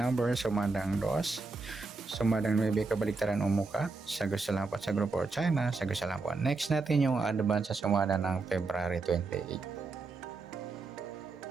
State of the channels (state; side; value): quieter; left; 3.9 dB